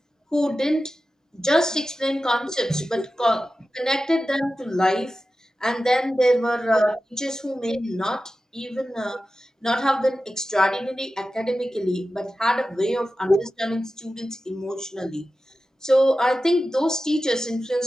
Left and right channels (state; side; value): normal; both; correlation 0.93